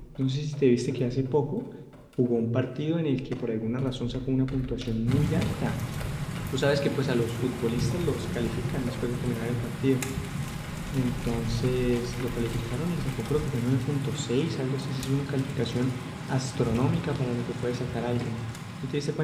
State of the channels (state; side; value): identical; both; correlation 1.00